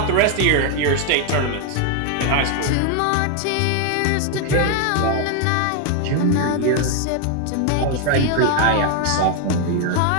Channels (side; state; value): both; different; correlation 0.01